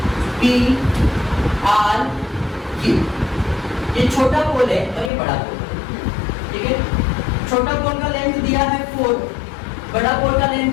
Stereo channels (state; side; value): drops out; right; at 5.1 s